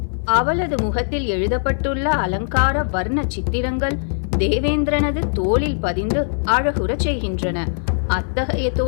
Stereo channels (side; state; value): right; silent; digital silence